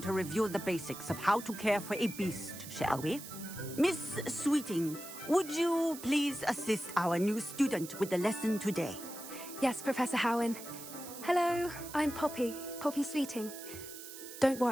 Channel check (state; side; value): noise; right; hiss, 12 dB below the sound